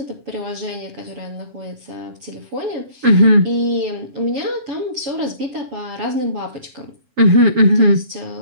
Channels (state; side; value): late; left; 7.3 ms